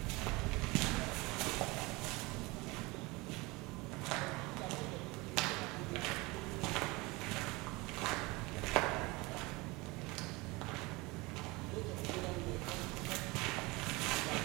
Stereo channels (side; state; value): left; quieter; 23.8 dB